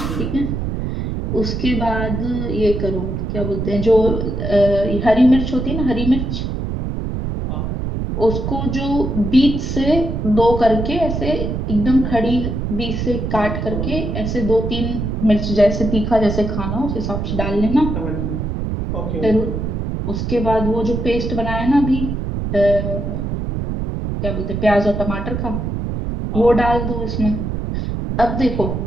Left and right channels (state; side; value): noise; right; rumble, 3 dB below the sound